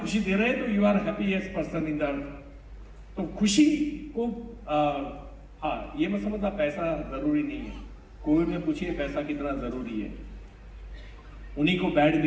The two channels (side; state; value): both; identical; correlation 1.00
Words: दे रहे हैं तो you are happiest person in the earth. तो खुशी को हाँ, ये मत समझना पैसा जरूरी नहीं है। कोविड में पूछिए पैसा कितना जरूरी है। उन्हीं को बेड